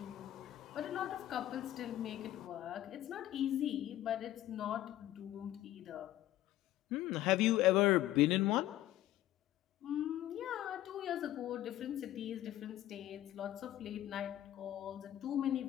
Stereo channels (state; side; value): quieter; right; 13.8 dB